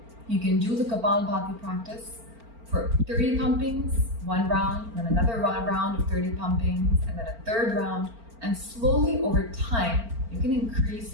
You can do the Kapalabhati practice for 30 pumpings, one round, then another round of 30 pumpings, and then a third round. And slowly over time, you can increase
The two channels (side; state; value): left; late; 4.4 ms